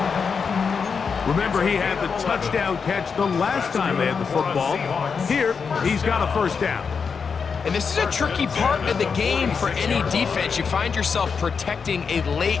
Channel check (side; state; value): right; quieter; 5.8 dB